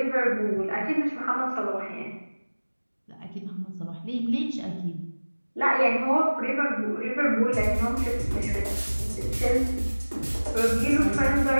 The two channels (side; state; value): both; inverted; correlation -1.00